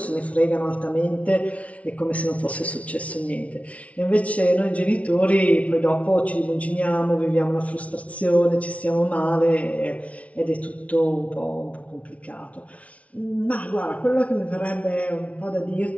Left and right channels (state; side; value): late; right; 0.065 ms